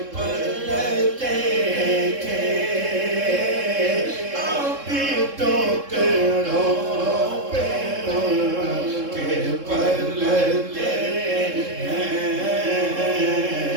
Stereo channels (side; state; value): left; late; 3.7 ms